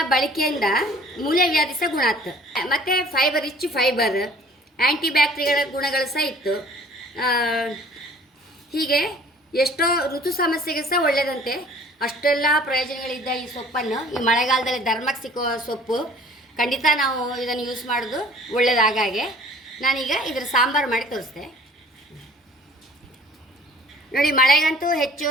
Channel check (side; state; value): both; normal; correlation 0.51